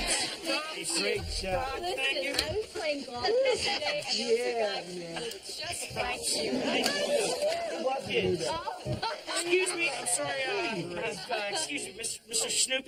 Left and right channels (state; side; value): identical; both; correlation 1.00